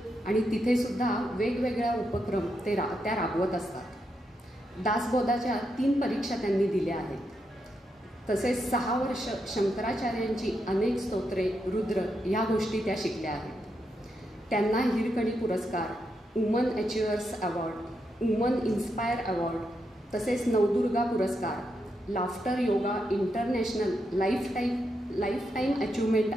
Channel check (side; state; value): both; normal; correlation 0.82